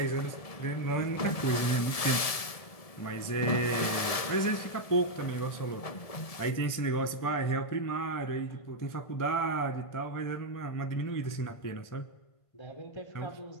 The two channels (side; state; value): right; late; 1.7 ms